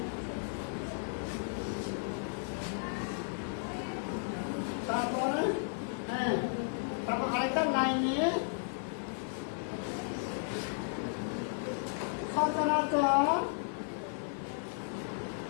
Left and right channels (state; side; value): silent; right; 55 dB below the other